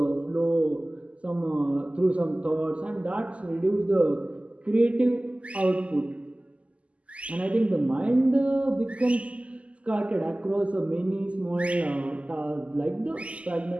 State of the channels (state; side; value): late; left; 0.062 ms